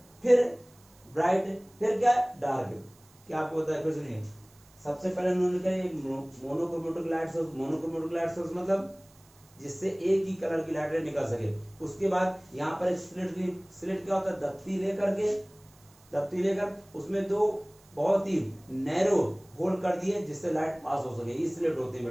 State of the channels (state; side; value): noise; right; hiss, 28 dB below the sound